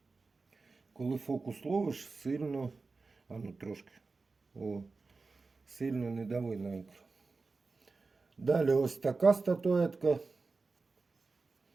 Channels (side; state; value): left; quieter; 4.0 dB